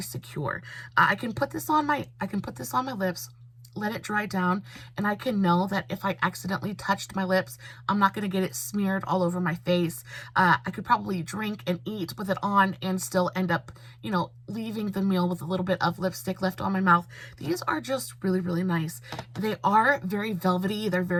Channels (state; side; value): identical; both; correlation 1.00